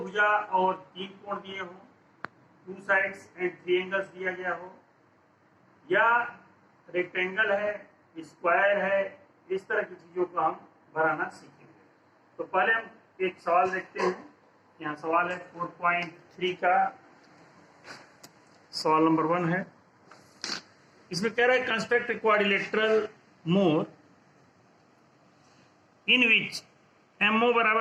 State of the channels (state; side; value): identical; both; correlation 1.00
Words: और 3 कोण दिए हों, 2 साइड्स एंड 3 एंगल्स दिया गया हो, या रेक्टेंगल है, स्क्वायर है, इस तरह की चीजों को हम बनाना सीखेंगे। तो पहले हम एक सवाल देखते हैं। यहाँ सवाल है 4.3 का सवाल नंबर 1 है। इसमें कह रहा है कंस्ट्रक्ट क्वाड्रिलेटरल मोर इन विच एमओ